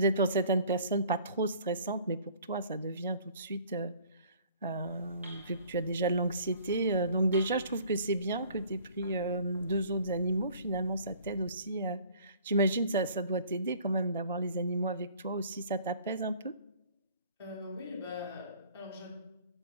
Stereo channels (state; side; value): inverted; both; correlation -0.52